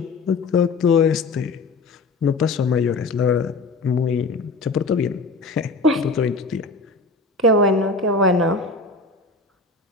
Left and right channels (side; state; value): right; quieter; 3.5 dB